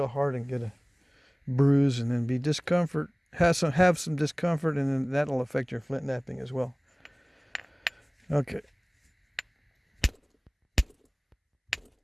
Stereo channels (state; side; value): identical; both; correlation 1.00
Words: hard and get a bruise and then be discomfort. Have some discomfort, and then that'll affect your Flintknapping as well. Okay.